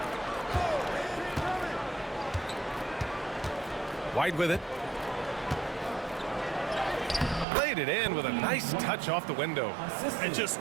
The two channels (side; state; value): left; drops out; at 7.5 s